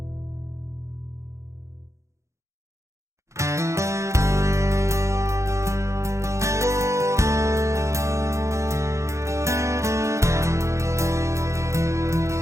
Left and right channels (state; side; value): late; left; 0.14 ms